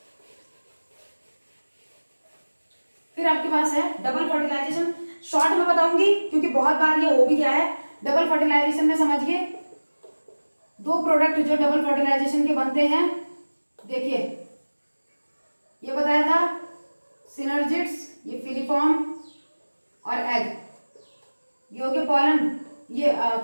फिर आपके पास है डबल फर्टिलाइजेशन, शॉर्ट में बताऊंगी क्योंकि बहुत बार ये हो भी गया है। डबल फर्टिलाइजेशन में समझिए दो प्रोडक्ट जो डबल फर्टिलाइजेशन के बनते हैं, देखिए ये बताया था सिनर्जिड्स, ये फिलीफॉर्म और एग, ये हो गया पॉलन, ये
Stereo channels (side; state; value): both; inverted; correlation -1.00